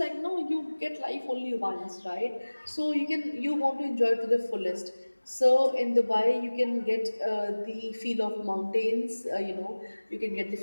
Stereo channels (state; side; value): inverted; both; correlation -1.00